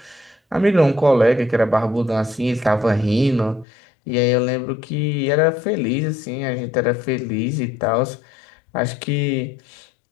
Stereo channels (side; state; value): right; drops out; at 3.7 s